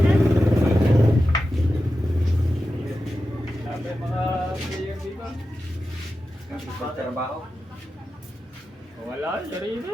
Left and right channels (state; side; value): normal; both; correlation 0.92